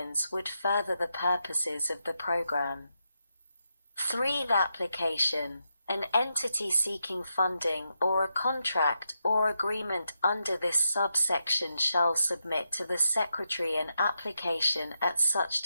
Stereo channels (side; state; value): both; inverted; correlation -0.85